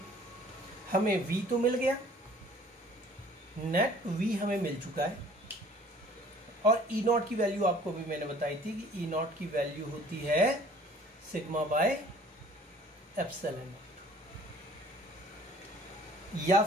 हमें V तो मिल गया, नेट V हमें मिल चुका है, और ई नॉट की वैल्यू आपको भी मैंने बताई थी कि ई नॉट की वैल्यू होती है सिग्मा बाय एप्सिलॉन नॉट, या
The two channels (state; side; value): normal; both; correlation 0.53